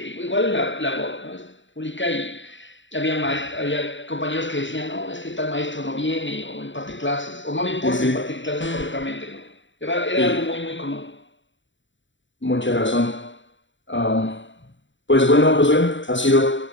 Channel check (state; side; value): late; right; 0.54 ms